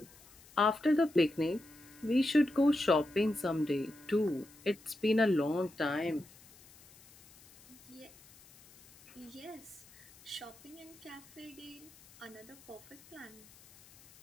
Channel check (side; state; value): left; noise; hiss, 24 dB below the sound